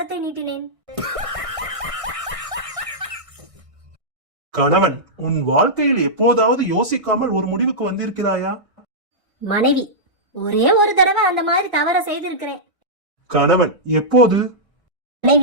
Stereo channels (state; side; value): late; left; 1.6 ms